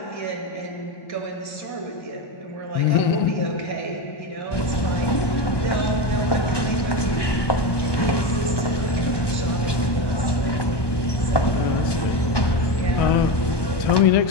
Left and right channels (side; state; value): right; late; 1.2 ms